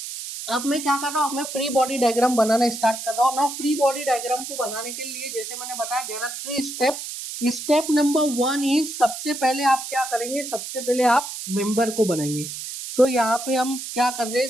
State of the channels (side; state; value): right; noise; hiss, 8 dB below the sound